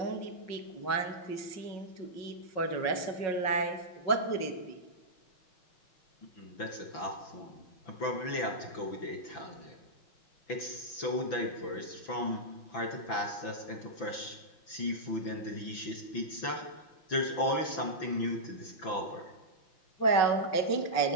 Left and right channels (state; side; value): late; right; 5.9 ms